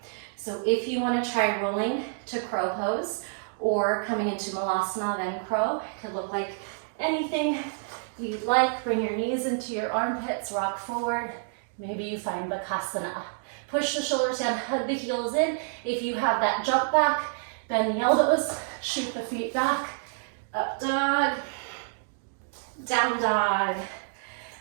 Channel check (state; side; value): silent; left; digital silence